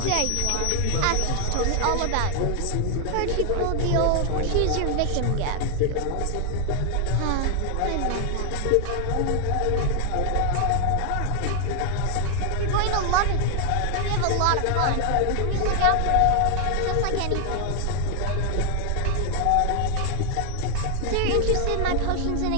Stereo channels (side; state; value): both; different; correlation 0.00